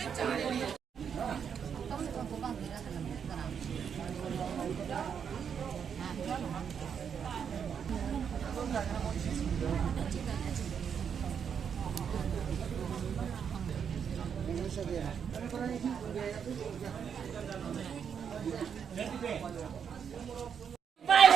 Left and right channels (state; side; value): quieter; left; 7.4 dB